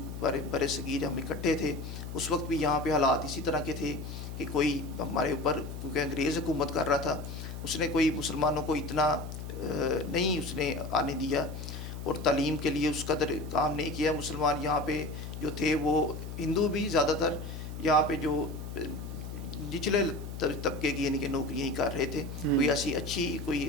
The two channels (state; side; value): noise; left; hum, 8 dB below the sound